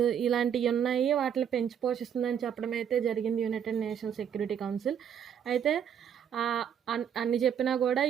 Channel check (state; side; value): quieter; left; 8.6 dB